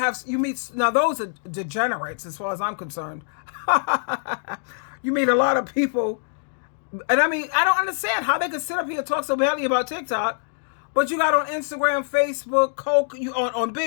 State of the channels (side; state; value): right; silent; 63 dB below the other